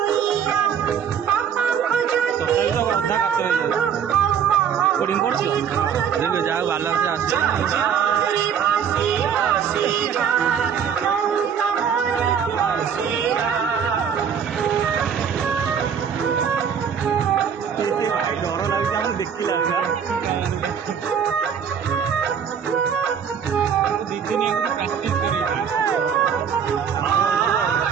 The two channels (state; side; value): quieter; left; 7.6 dB